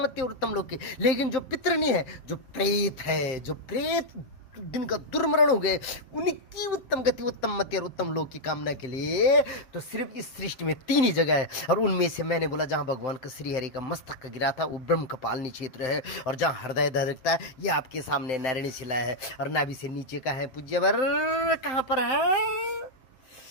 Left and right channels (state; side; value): late; right; 7.7 ms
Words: मति और उत्तम लोक की। लेकिन जो पितर नहीं है, जो प्रेत है, जो प्रेत दिन का दुर्मरण हो गए, उनकी उत्तम गति उत्तम मति और उत्तम लोक की कामना के लिए तो सिर्फ इस सृष्टि में 3 ही जगह है। और उनमें से मैंने बोला जहां भगवान का श्री हरि का मस्तक गिरा था वो ब्रह्म कपालिनी क्षेत्र है, और जहां हृदय धड़कता है ये आपके सामने नारायणी शिला है। और नाभि से नीचे का है पूज्यवर कहां पर है?